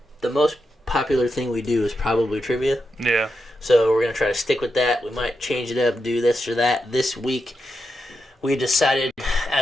most popular thing we do is probably trivia. Yeah. So we're going to try to stick with that. We might change it up, do this or that. This week, we decided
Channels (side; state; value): both; normal; correlation 0.87